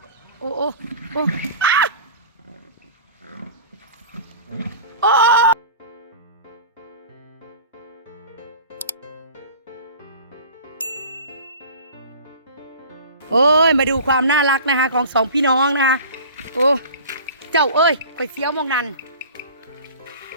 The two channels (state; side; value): inverted; both; correlation -0.39